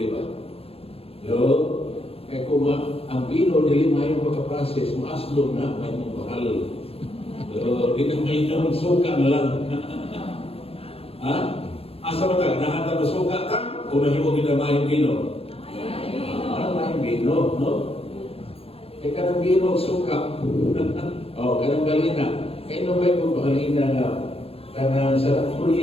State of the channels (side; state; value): right; late; 0.28 ms